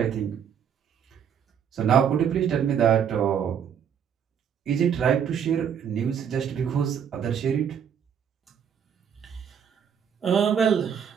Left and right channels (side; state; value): left; quieter; 8.0 dB